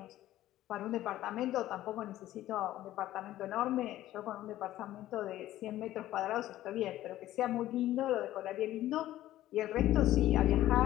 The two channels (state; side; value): quieter; right; 14.2 dB